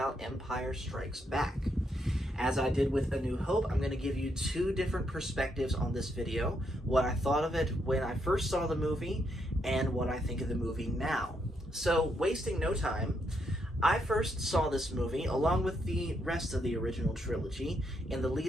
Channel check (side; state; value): both; normal; correlation 0.78